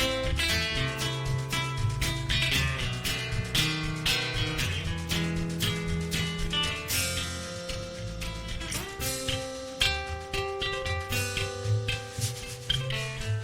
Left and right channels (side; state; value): both; identical; correlation 1.00